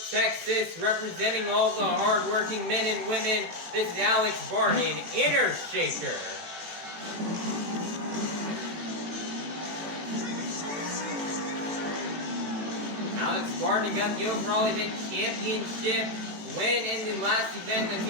Texas, representing all the hardworking men and women, this is Alex Bardin, Inner Shaker. Alex Bardin got the overall event championship win in the last event. Let's see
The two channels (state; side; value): late; left; 18 ms